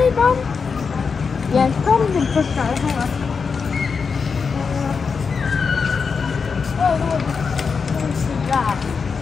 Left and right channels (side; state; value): right; quieter; 5.4 dB